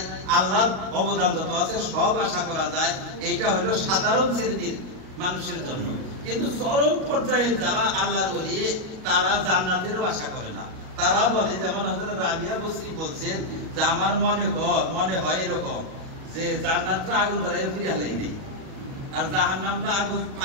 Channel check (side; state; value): left; late; 38 ms